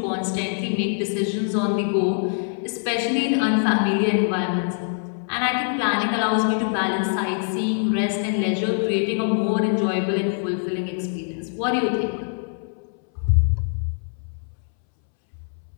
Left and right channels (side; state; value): right; silent; 63 dB below the other